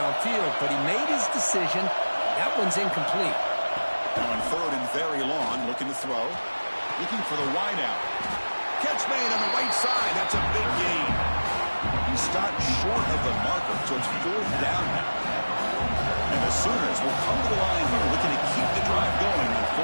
But he made his decision. That one's incomplete. Now on 3rd and very long, looking to throw. Looking for the wide out. Catch made on the right side. That's a big gain. He stopped short of the marker, so it's 4th down now. And the Sooners will come to the line here, looking to keep the drive going on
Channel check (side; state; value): both; inverted; correlation -1.00